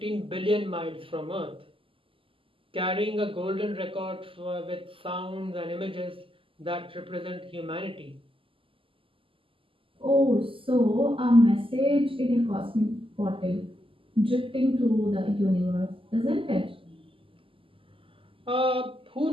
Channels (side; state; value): left; late; 0.25 ms